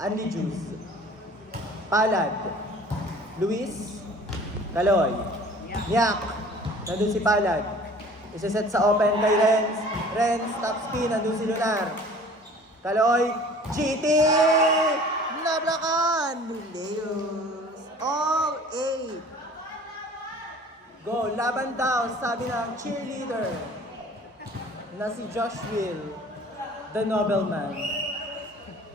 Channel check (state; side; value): normal; both; correlation 0.48